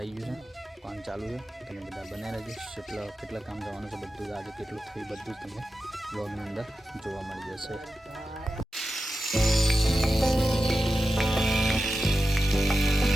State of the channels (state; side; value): normal; both; correlation 0.92